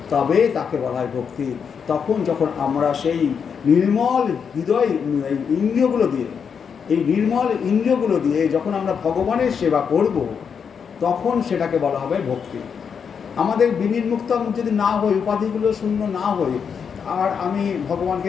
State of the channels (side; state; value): right; quieter; 6.7 dB